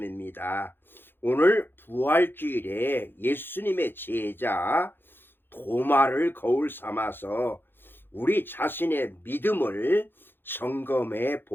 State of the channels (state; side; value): late; right; 0.10 ms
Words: 오늘 부활주일에 예수님의 제자 도마를 거울 삼아서 우리 자신의 믿음을 점검해